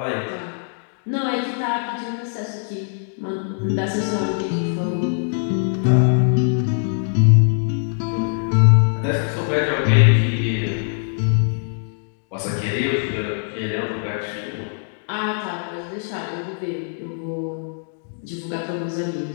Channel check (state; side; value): silent; right; digital silence